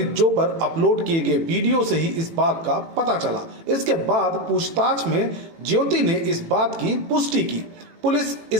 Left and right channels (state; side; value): late; left; 18 ms